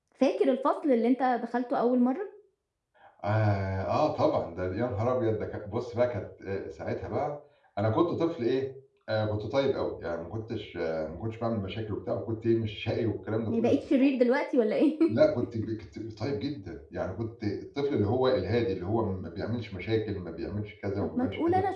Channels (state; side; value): identical; both; correlation 1.00